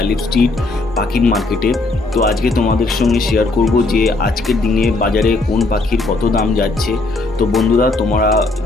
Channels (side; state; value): right; quieter; 3.2 dB